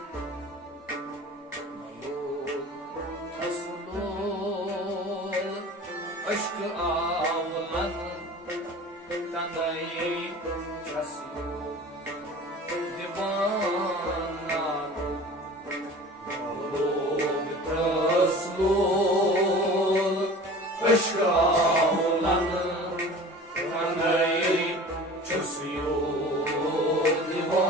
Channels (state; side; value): normal; both; correlation 0.40